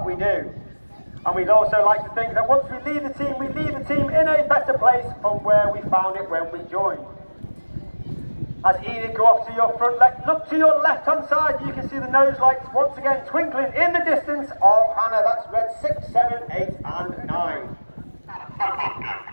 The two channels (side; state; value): both; inverted; correlation -1.00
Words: we do. And we'd also like to think that once we leave the team in a better place from where we found it when we joined. As Enid go off to your front left, look to your left hand side, you can see the nose lights once again twinkling in the distance of Hannah. That's Red 6, 7, 8 and 9.